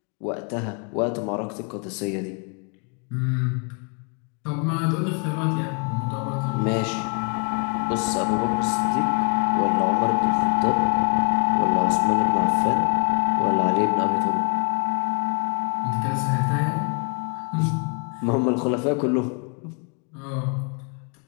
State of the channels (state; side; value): quieter; right; 39.6 dB